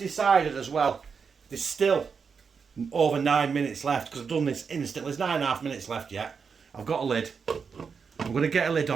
as well, there's still over 9 minutes left because I've done this instantly. There's 9.5 minutes left yet. I've got a lid. I'm going to get a lid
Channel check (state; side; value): quieter; left; 5.8 dB